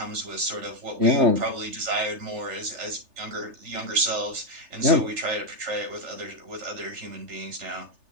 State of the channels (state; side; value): late; left; 3.4 ms